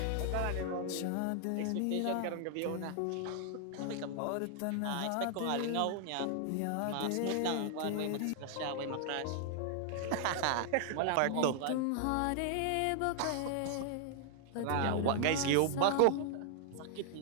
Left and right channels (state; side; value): different; both; correlation 0.00